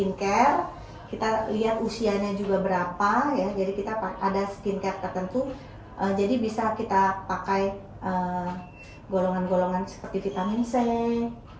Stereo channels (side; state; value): both; identical; correlation 1.00